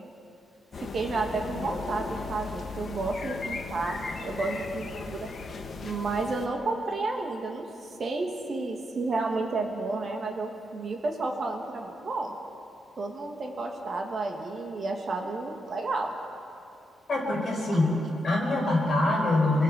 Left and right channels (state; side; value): normal; both; correlation 0.82